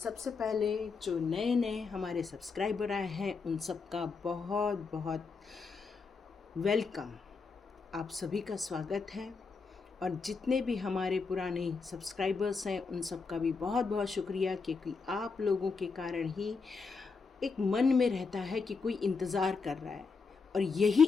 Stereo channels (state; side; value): quieter; right; 4.7 dB